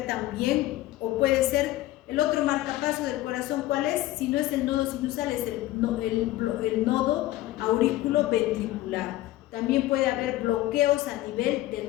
también, o puede ser el otro marcapaso del corazón, ¿cuál es? Si no es el nodo sinusal, es el nodo aurículo-ventricular. También puede haber bloqueos a nivel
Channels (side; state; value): right; quieter; 16.0 dB